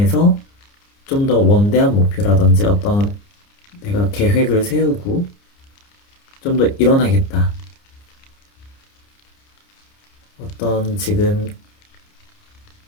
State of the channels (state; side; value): late; right; 29 ms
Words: 좀 더 원대한 목표라든지 어떤 내가 계획을 세우고 좀 더 일어나겠다. 어떤 지금